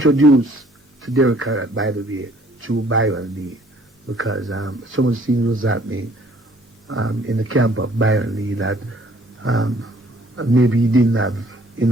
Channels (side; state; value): both; normal; correlation 0.59